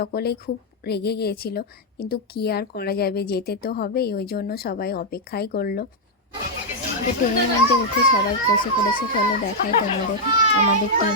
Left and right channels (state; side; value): normal; both; correlation -0.02